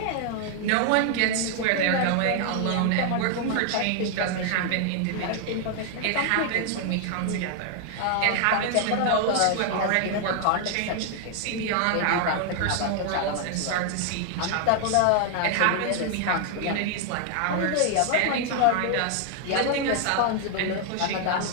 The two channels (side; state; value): both; different; correlation 0.00